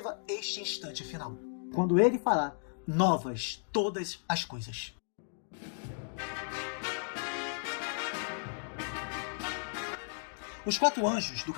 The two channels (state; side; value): silent; right; digital silence